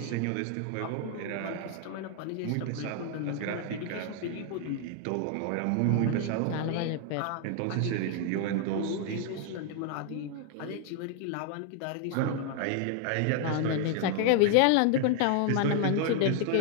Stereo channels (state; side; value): different; both; correlation 0.00